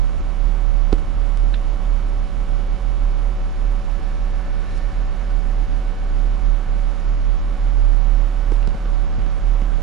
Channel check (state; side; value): quieter; left; 9.4 dB